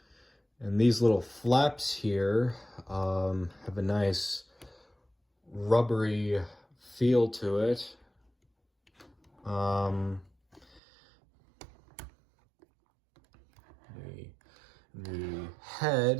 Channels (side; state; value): left; drops out; at 10.8 s